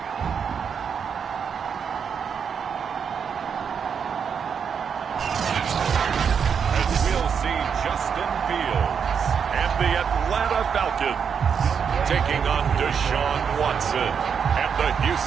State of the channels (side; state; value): left; quieter; 6.9 dB